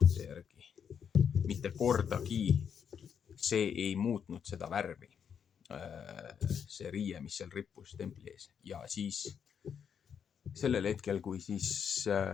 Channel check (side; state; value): right; quieter; 7.6 dB